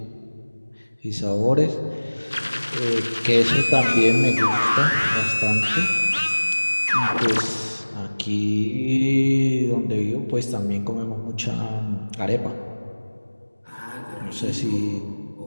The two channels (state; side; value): inverted; both; correlation -1.00